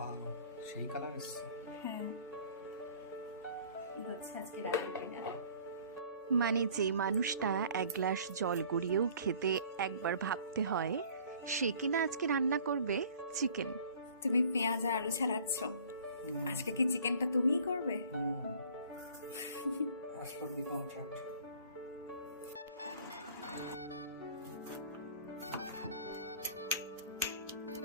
সেই colour এসছে। হ্যাঁ, এই হচ্ছে আজকে রাতের ডিনার। মানে যে মানুষটা এক গ্লাস জল গড়িয়েও খেতে একবার ভাবতে হয়, সে কিনা আজকে রান্না করবে চিকেন। তুমি পেঁয়াজ আর আলু ছাড়াচ্ছ, আজকে কি চিকেনটা তুমিই করবে? অ্যাজ পার দি কন্ট্রাক্ট।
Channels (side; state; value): both; inverted; correlation -0.51